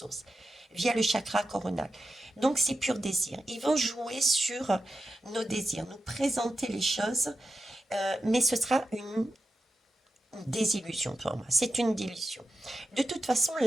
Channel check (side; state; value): both; normal; correlation 0.89